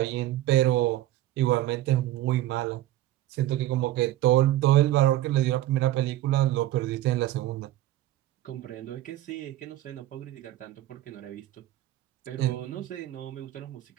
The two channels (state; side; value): quieter; left; 14.5 dB